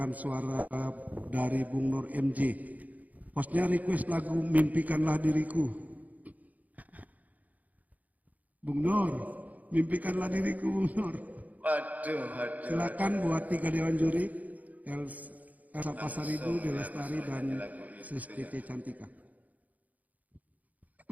suara dari Bung Nur MJ. Hostnya request lagu Mimpikanlah Diriku. Bung Nur, mimpikanlah diriku Bung Nur. Waduh. Silakan buat tiga Dewan Juri, Elsa Pasaribu, Delastari, dan Sestiti Cantika.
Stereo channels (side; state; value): left; late; 0.077 ms